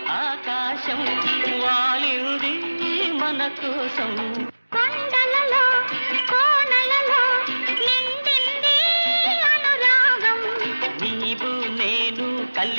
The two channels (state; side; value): inverted; both; correlation -1.00